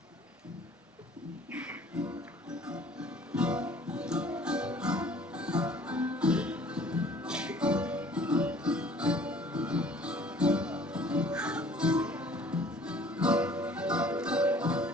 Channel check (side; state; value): both; normal; correlation 0.53